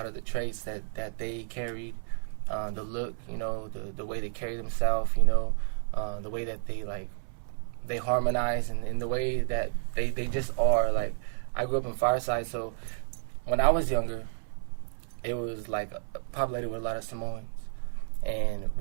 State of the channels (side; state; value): left; silent; 57 dB below the other